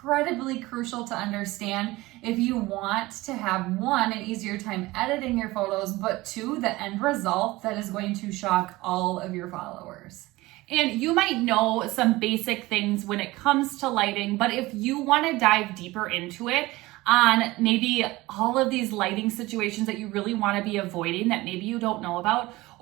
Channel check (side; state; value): left; quieter; 19.7 dB